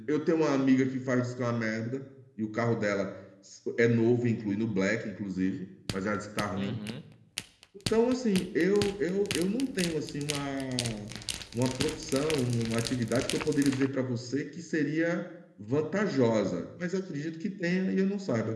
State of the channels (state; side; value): identical; both; correlation 1.00